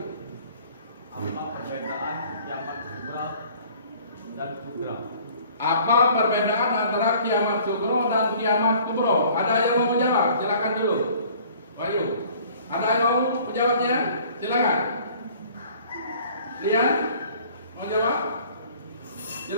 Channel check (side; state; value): both; inverted; correlation -0.53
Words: Apa perbedaan kiamat kubro dan kubro? Apa perbedaan antara kiamat sugro dan kiamat kubro? Ada yang mau menjawab? Silakan dulu. Ayu. Ada yang mau menjawabnya? Silakan. Lian, mau jawab?